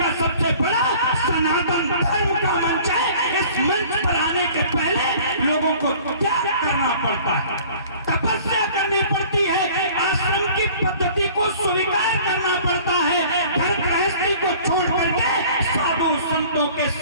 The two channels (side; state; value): both; inverted; correlation -0.49